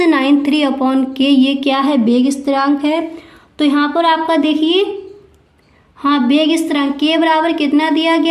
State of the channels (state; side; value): identical; both; correlation 1.00